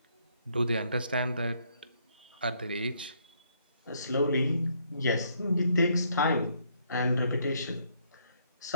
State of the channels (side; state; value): both; inverted; correlation -0.70